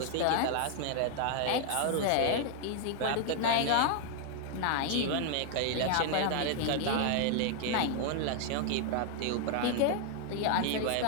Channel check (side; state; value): both; different; correlation 0.00